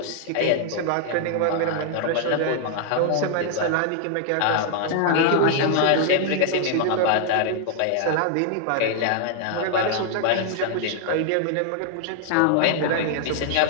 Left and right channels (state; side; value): different; both; correlation 0.00